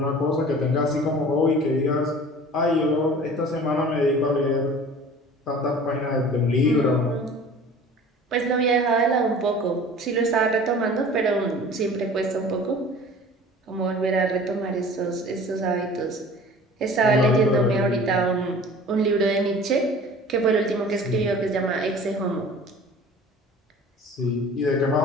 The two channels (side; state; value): both; normal; correlation 0.44